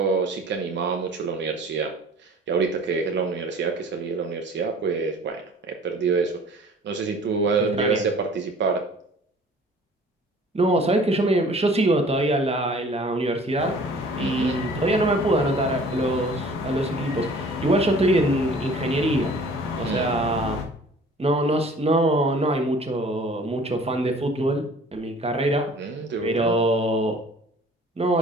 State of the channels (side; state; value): both; normal; correlation 0.50